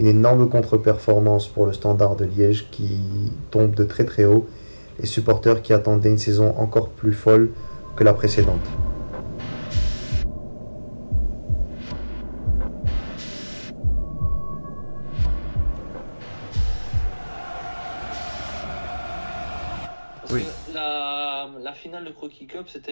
énorme contre-performance pour le Standard de Liège qui tombe de très très haut. Les supporters qui attendaient une saison encore plus folle que la précédente. Oui. La finale de Croquis Cup, c'était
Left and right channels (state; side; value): inverted; both; correlation -1.00